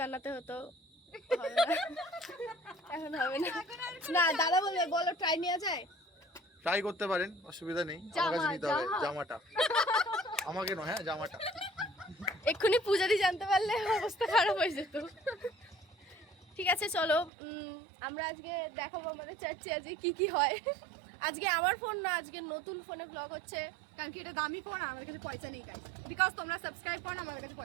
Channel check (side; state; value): left; drops out; at 17.3 s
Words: হতো। হবে না, এখন হবে না। না, দাদা বলবে বলো ট্রাই নেওয়া যায়। ট্রাই করতে পারেন, অসুবিধা নেই। আমার কাছে নিতে হবে জামাটা, আমাকে নয়, হ্যাঁ জামাটা। এক্ষুনি পূজাদি জানতে পারলে অবস্থা খারাপ হয়ে যেত। ঠিক আছে, চলো আমরা আজকে দেখাবো আমাদের চার্চে আজকে কি কি হয়। আজকে আমার ফোন না, আজকে নতুন ফোনে ব্লগ হচ্ছে। কারণ কি এটা দামি ফোন, আমাদের কাছে পয়সা নেই গাইস। বিকজ তোমরা সাবস্ক্রাইব করো না, আমাদের কাছে